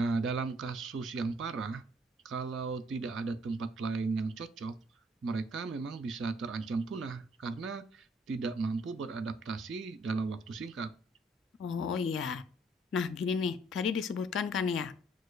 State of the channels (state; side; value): normal; both; correlation 0.64